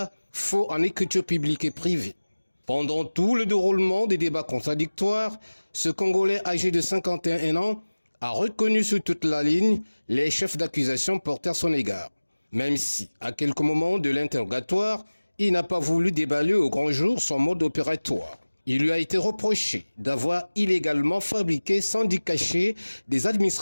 faux en écriture publique et privée. Pendant tout le déroulement des débats contradictoires, ce Congolais âgé de 51 ans a reconnu sur toute la ligne les chefs d'accusation portés à son égard. Même si, à quelques moments de l'interrogatoire, il n'a pas voulu déballer au grand jour son mode opératoire. Il lui a été reproché d'avoir illégalement fabriqué sans dit caché des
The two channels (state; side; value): inverted; both; correlation -1.00